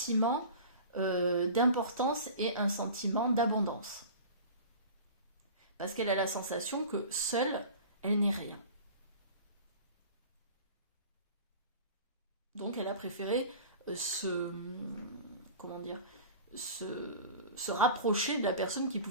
d'importance et un sentiment d'abondance. Parce qu'elle a la sensation que seule, elle n'est rien. Donc elle a préféré comment dire, se rapprocher de la personne qui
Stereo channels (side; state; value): both; inverted; correlation -0.38